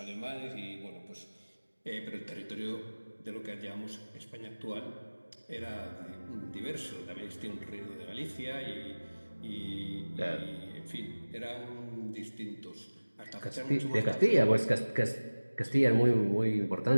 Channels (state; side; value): inverted; both; correlation -1.00